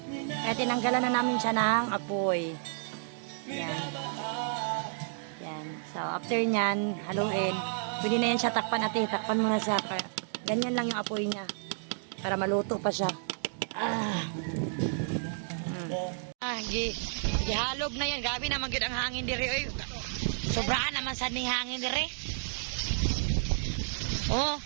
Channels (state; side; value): silent; left; digital silence